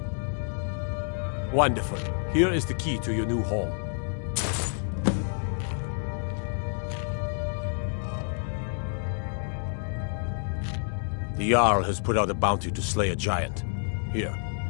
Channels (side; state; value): right; silent; 59 dB below the other